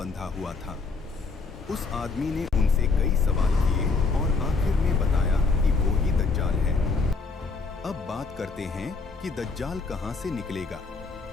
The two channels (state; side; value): quieter; right; 4.3 dB